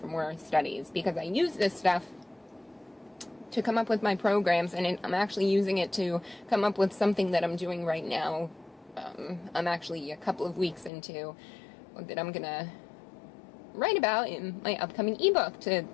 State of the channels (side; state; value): right; drops out; at 10.9 s